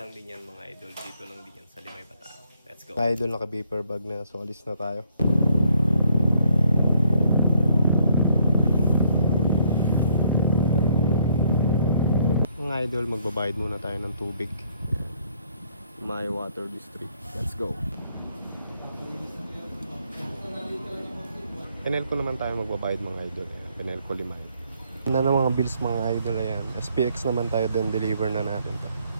din yan mga idol. Dito lang din yan sa Limay Bataan. Let's go. Mga idol, naka-vapor bag na. So alis na tayo. Mga idol, magbabayad muna tayo ng tubig. My Water District. Let's go. Penelco naman tayo magbabayad mga idol. Penelco Limay. Na ng mga bills mga idol, ayan. SPX naman tayo din, deliver na natin to.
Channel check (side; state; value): both; inverted; correlation -0.68